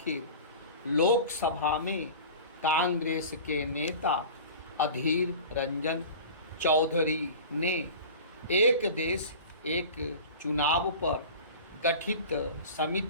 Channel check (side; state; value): both; inverted; correlation -0.37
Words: लोकसभा में कांग्रेस के नेता अधीर रंजन चौधरी ने एक देश एक चुनाव पर गठित